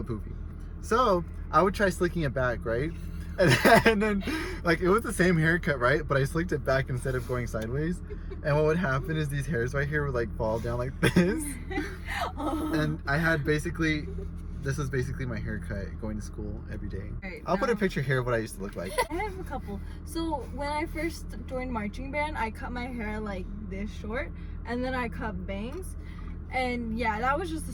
poofy. So I would try slicking it back, right? And then like it was the same haircut, right? But I slicked it back instead of going sideways. And what would happen is these hairs right here would like fall down like this. Oh. And I had basically, this was basically my haircut going to school every day. Right, I'll put a now- picture here of what I used to look like. I have a couple. So when I first joined marching band, I cut my hair like this short, and then I cut bangs. And yeah, that was just the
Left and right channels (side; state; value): both; identical; correlation 1.00